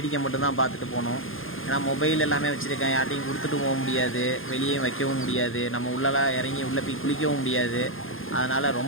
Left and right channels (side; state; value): right; late; 0.59 ms